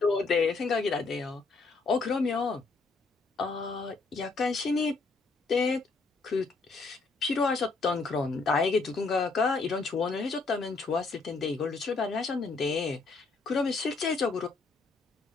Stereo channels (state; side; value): quieter; right; 4.0 dB